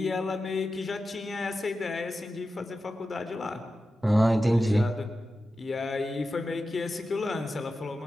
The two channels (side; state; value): both; normal; correlation 0.92